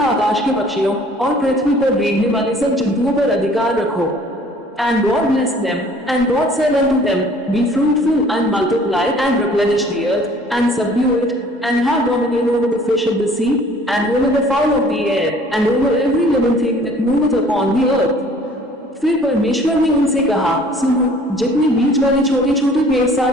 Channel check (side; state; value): both; normal; correlation 0.53